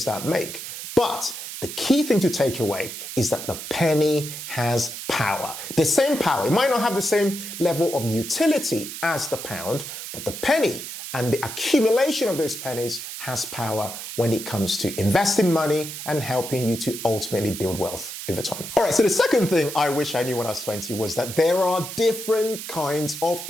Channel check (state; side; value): noise; right; hiss, 9 dB below the sound